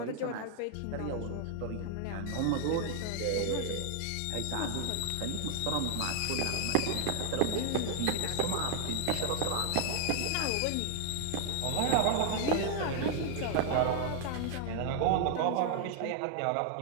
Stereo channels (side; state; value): both; different; correlation 0.00